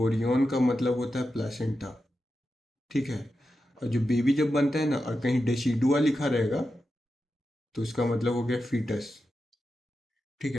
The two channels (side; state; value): both; normal; correlation 0.90